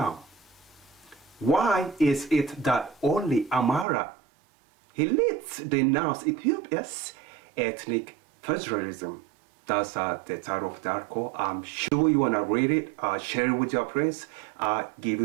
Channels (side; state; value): left; drops out; at 3.9 s